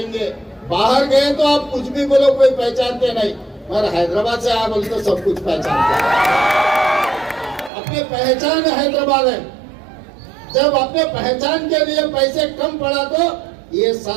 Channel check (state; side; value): drops out; left; at 7.7 s